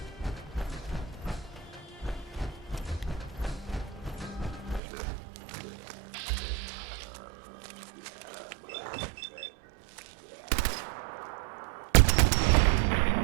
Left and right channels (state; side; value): drops out; left; at 4.8 s